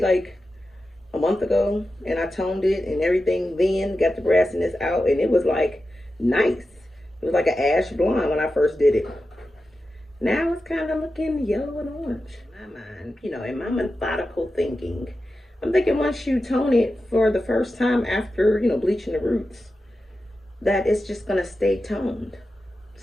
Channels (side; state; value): both; normal; correlation 0.92